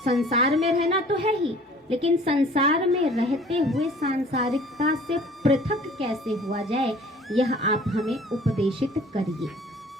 संसार में रहना तो है ही, लेकिन संसार में रहते हुए सांसारिकता से पृथक कैसे हुआ जाए, यह आप हमें उपदेशित करिए।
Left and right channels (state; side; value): normal; both; correlation 0.50